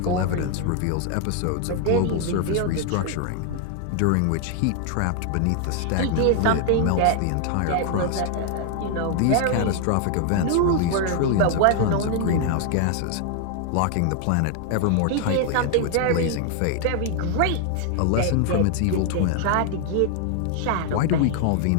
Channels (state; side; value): different; both; correlation 0.00